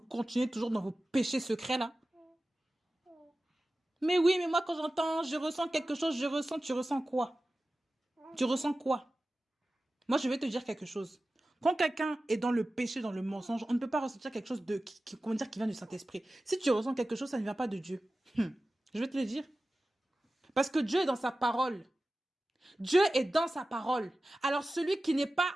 toujours dans vos péchés secrets là? Mais oui, mais moi quand j'entends, je ressens quelque chose, tu ressens quoi? Tu ressens quoi? Moi, je vais te dire quelque chose. Quand quelqu'un est dans le péché, dans le mensonge, on ne peut pas ressentir quelque chose comment dire, qui vient du Saint-Esprit. Si tu ressens quelque chose, ça ne vient pas de Dieu. Je vais te le dire. Parce que Dieu est dans sa parole. Dieu est dans sa parole. Alors celui qui n'est pas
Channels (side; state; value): both; normal; correlation 0.95